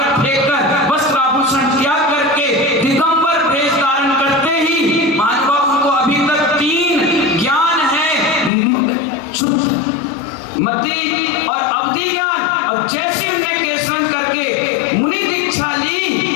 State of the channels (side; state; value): right; drops out; at 8.5 s